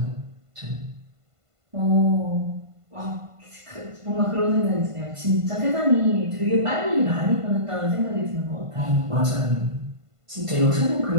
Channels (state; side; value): late; left; 1.5 ms